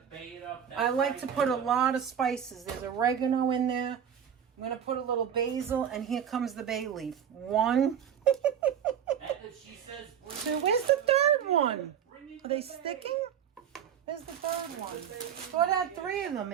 bait up. I like to put a lot of spices. There's oregano in there. I'm going to put a little basil, and here comes the bay leaf. 1. She says, Where's the third one? Are they sticking? Where's the third one? Thought I had 3 of them,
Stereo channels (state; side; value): quieter; left; 8.6 dB